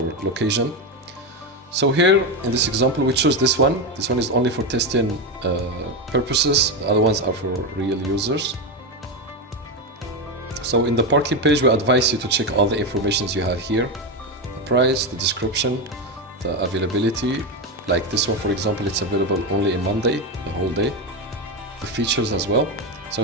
location. So here in this example we choose this one. This one is only for testing purposes. The other ones are for real users. So in the parking page we advise you to check all the informations you have here: the price, the description, the availability. Like this one, for example, it's available only in Monday, the whole day. The features as well. So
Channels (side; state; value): both; normal; correlation 0.12